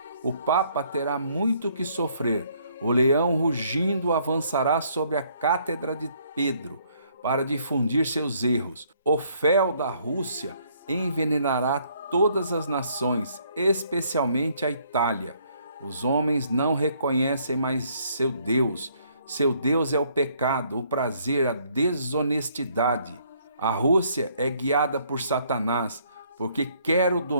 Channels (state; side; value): inverted; both; correlation -0.66